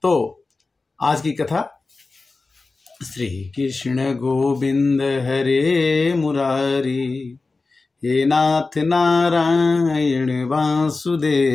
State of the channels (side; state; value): right; quieter; 3.7 dB